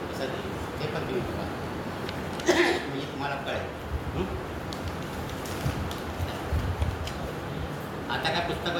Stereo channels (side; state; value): both; identical; correlation 1.00